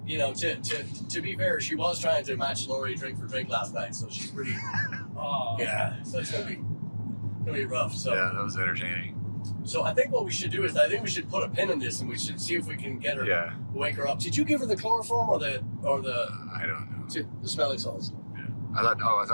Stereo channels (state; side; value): inverted; both; correlation -1.00